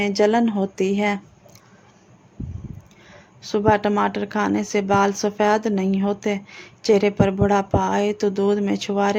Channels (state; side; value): identical; both; correlation 1.00